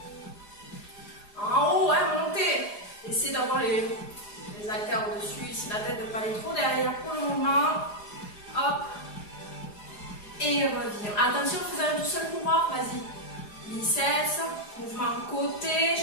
En haut, hein, montez. Essayez d'avoir les haltères au-dessus. Ici, la tête de ne pas aller trop derrière pour le moment. Hop. Et reviens. Attention, faisons un tout seul pouvoir. Vas-y. Biceps. Mouvement côté.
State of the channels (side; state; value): right; late; 4.9 ms